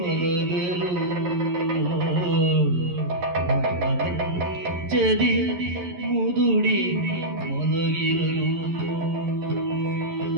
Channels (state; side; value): late; left; 11 ms